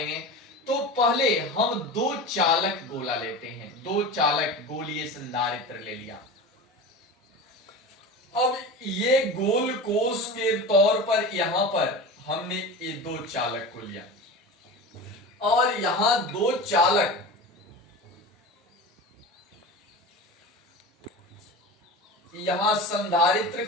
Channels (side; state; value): both; normal; correlation 0.30